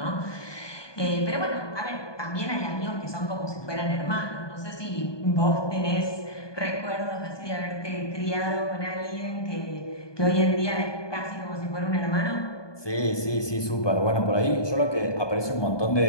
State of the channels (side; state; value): right; late; 1.2 ms